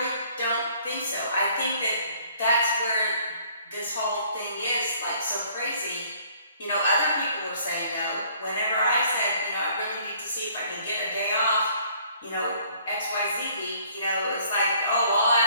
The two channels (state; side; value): inverted; both; correlation -0.59